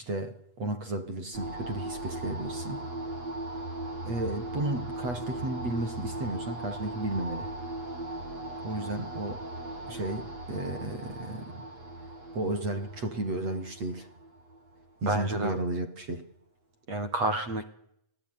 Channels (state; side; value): late; left; 8.3 ms